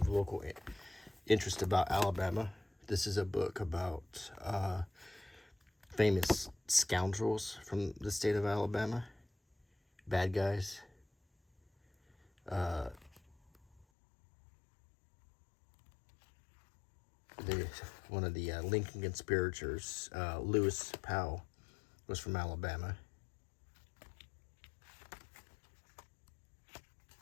local interest about Alabama. This is a book about famous scoundrels from the state of Alabama. Bad guys. One of the Lincoln conspirators, Lewis Powell, was from Alabama.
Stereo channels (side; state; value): right; drops out; at 13.9 s